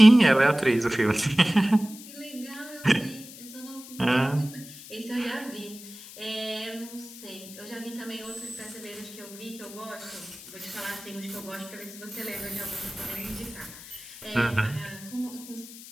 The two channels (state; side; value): noise; left; hiss, 16 dB below the sound